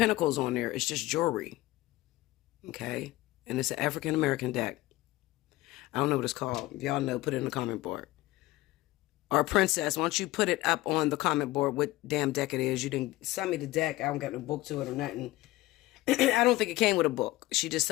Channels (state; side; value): quieter; right; 18.3 dB